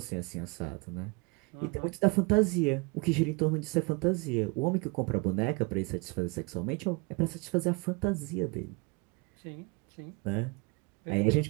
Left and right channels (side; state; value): left; quieter; 28.3 dB